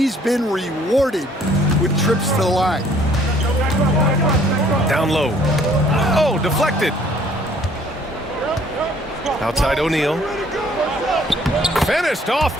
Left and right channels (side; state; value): both; normal; correlation 0.59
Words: been rewarded with trips to the line. Down low. Oh, deflected. Outside O'Neal. Finished off